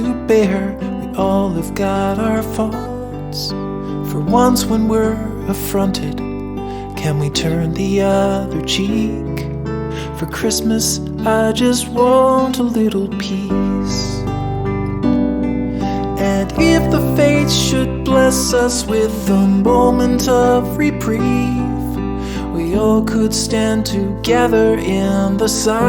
bear, we all have got our faults. For once when we're affronted, can we turn the other cheek? For Christmas I just want a little peace. And if the fates should bless us with a moment of reprieve, we all could stand together in the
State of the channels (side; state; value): both; identical; correlation 1.00